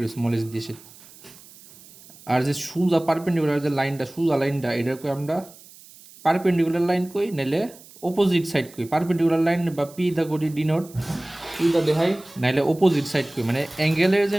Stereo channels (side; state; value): right; noise; hiss, 22 dB below the sound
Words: স্মল এইচ দিয়ে। আর যে সোজা পারপেন্ডিকুলার যে লাইনটা, সোজা লাইনটা, এটা কই আমরা পারপেন্ডিকুলার লাইন কই, নাইলে অপোজিট সাইড কই। পারপেন্ডিকুলার লাইন বা পি দা করি ডিনোট, পি দা দেখাই, নাইলে অপোজিট সাইড কই, মানে অ্যাঙ্গেলের যে